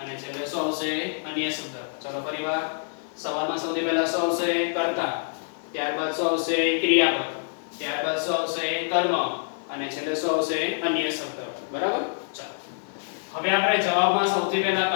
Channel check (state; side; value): silent; right; 61 dB below the other